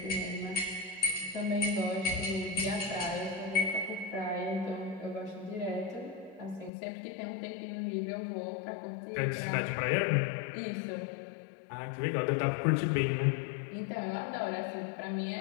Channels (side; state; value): right; drops out; at 6.7 s